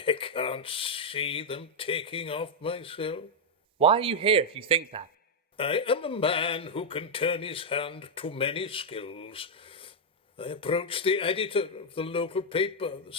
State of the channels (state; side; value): normal; both; correlation -0.02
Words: can't see them taking off myself. Why are you here if you think that? I am a man who can turn his hand to many skills. I approached the editor of the local paper, the